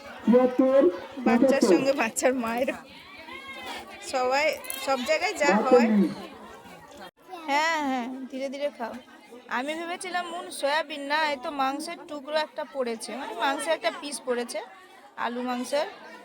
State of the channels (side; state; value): both; identical; correlation 1.00